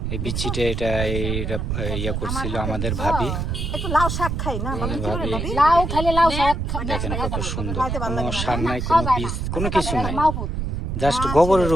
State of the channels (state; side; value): noise; right; rumble, 2 dB below the sound